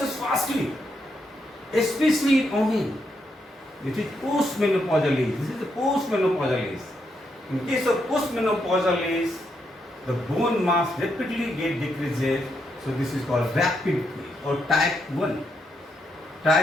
fastly. Especially in women. It is postmenopausal age. This is the postmenopausal age. In case of postmenopausal age, the bone mass rapidly decreases. So this is called rapid or type 1.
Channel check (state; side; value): normal; both; correlation 0.80